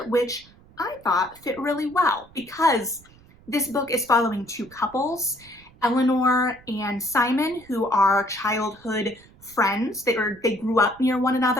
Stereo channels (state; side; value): noise; right; rumble, 25 dB below the sound